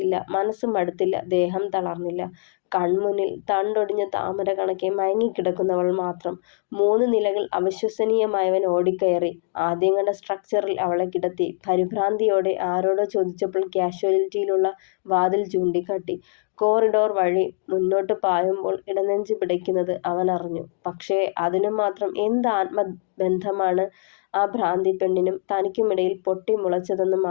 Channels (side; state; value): right; silent; digital silence